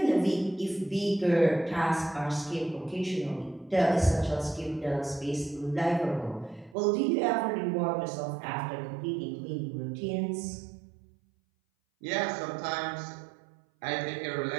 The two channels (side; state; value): left; drops out; at 6.8 s